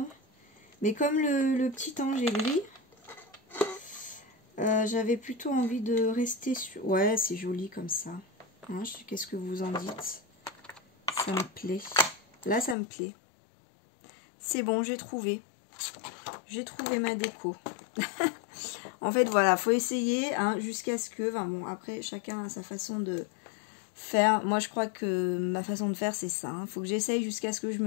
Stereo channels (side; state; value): right; drops out; at 12.8 s